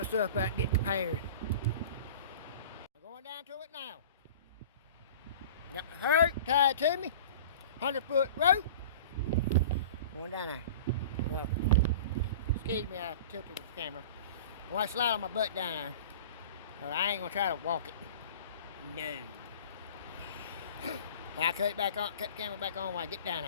stuff back and get prepared. I'm going down to it now. Got my rope tied to me. 100-foot rope. Going down there. Well, excuse me, I tilted the camera. I want to slide on my butt down there. But I ain't gonna try to walk it. No. I cut it back on, cut the camera back on when I get down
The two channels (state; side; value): inverted; both; correlation -0.39